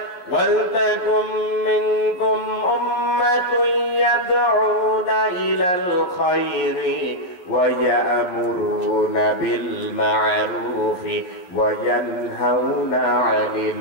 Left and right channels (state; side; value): late; right; 11 ms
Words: ওয়াল তাকুম মিনকুম উম্মাতুন ইয়াদউনা ইলাল খায়রি ওয়া ইয়ামুরুনা বিল মা'রুফি ওয়া ইয়ানহাউনা